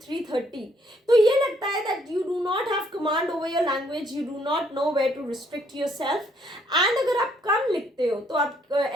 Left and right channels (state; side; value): normal; both; correlation 0.68